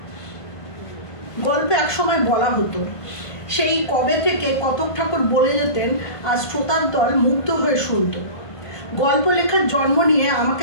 গল্পে একসময় বলা হতো, সেই কবে থেকে কতক ঠাকুর বলে যেতেন, আর শ্রোতার দল মুগ্ধ হয়ে শুনত। গল্প লেখার জন্ম নিয়ে আমাকে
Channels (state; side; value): late; right; 1.5 ms